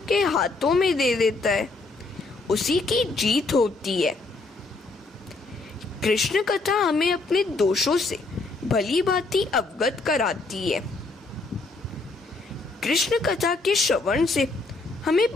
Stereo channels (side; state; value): right; quieter; 3.4 dB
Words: के हाथों में दे देता है उसी की जीत होती है। कृष्ण कथा हमें अपने दोषों से भली भांति अवगत कराती है। कृष्ण कथा के श्रवण से हमें